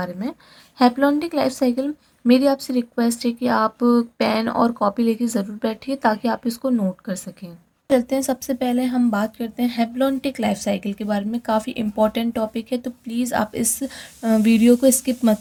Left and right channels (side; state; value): both; identical; correlation 1.00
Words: में। हैप्लॉन्टिक लाइफ साइकिल, मेरी आपसे रिक्वेस्ट है कि आप पेन और कॉपी लेके ज़रूर बैठिए ताकि आप इसको नोट कर सकें। चलते हैं, सबसे पहले हम बात करते हैं हैप्लॉन्टिक लाइफ साइकिल के बारे में। काफ़ी इंपॉर्टेंट टॉपिक है, तो प्लीज़ आप इस वीडियो को स्किप